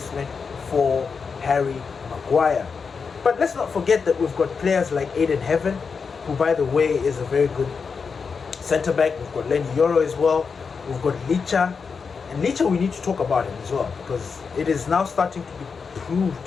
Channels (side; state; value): right; quieter; 5.4 dB